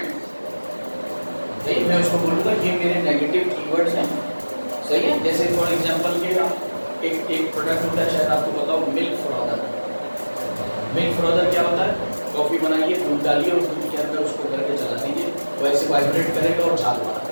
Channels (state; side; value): inverted; both; correlation -1.00